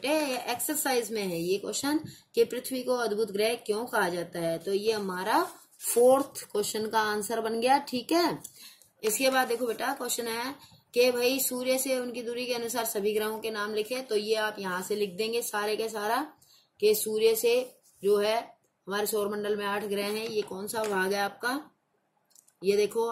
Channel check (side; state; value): both; identical; correlation 1.00